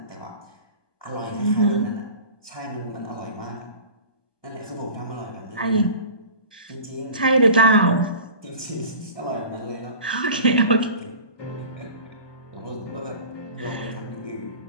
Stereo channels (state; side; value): late; right; 1.2 ms